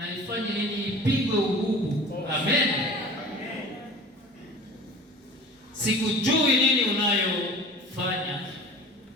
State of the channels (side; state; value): both; normal; correlation 0.41